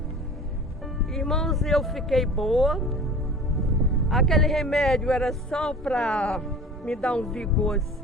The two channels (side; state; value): both; normal; correlation 0.41